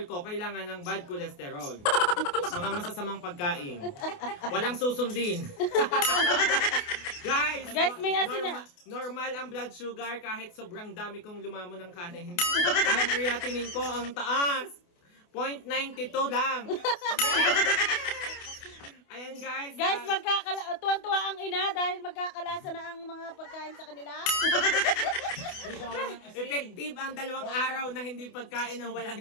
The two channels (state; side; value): late; right; 28 ms